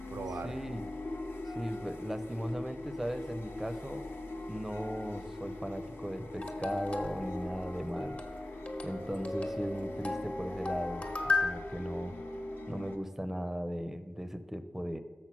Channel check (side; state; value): both; normal; correlation 0.95